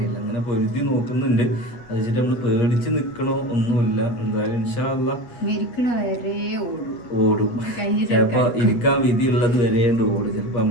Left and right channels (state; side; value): late; right; 8.2 ms